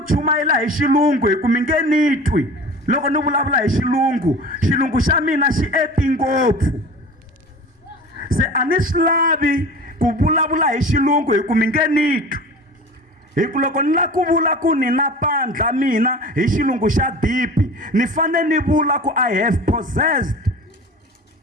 chumayela hi xilungu hi ku mi nge ni twi loko ni vulavula hi xilungu xa mina xi eti ngopfu. Se a ni swi lavi ku vulavula hi xilungu hi ku mi nge ni twi. Hi ku loko ni la ku vula ku ni na pandla mina hi xilungu xa dipi, ni fane ni vula ku I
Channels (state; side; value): normal; both; correlation 0.38